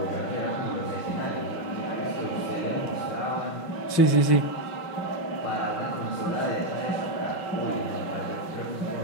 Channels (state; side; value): late; right; 5.6 ms